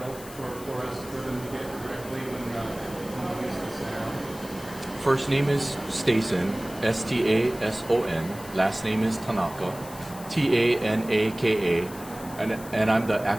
for us, for them to get directly when we use this now? First name is Stason, Stason. Last name is Tanaka, Tanaka, and I'm the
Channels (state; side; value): noise; left; hiss, 16 dB below the sound